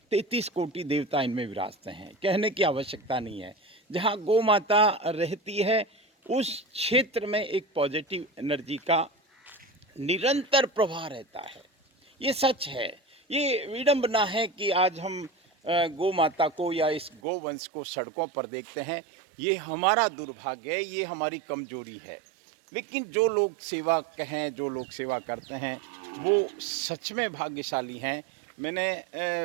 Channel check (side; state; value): left; drops out; at 17.2 s